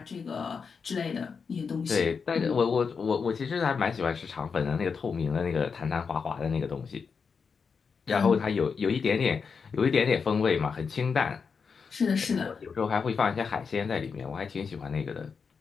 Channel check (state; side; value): quieter; right; 5.6 dB